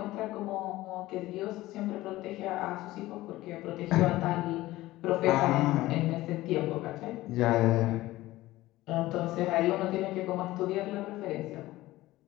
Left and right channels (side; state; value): right; quieter; 17.3 dB